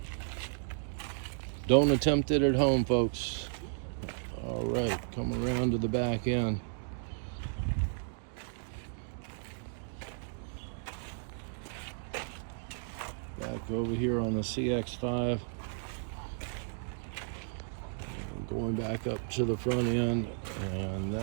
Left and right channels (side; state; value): left; silent; digital silence